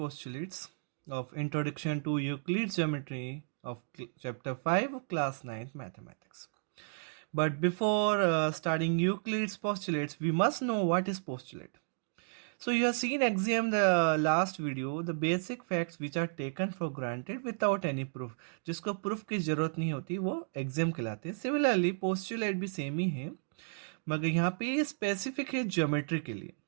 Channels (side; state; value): left; silent; digital silence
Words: of Introduction to Euclid's Geometry of Chapter 5 Class 9 Mathematics. But before starting Euclid's postulates, we must know what is postulate. So you have seen axiom the last video, the basic facts which are taken for granted without any proof. जिसको proof की जरूरत नहीं होती वो axiom कहलाते हैं. Similarly postulate भी सेम ही है, मगर यहाँ पे स्पेसिफिक है ज्योमेट्री के लिए.